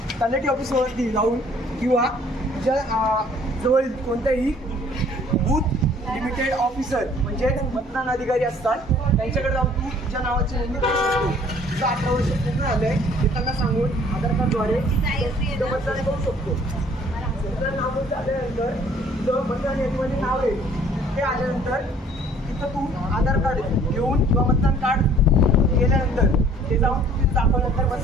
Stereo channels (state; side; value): normal; both; correlation 0.56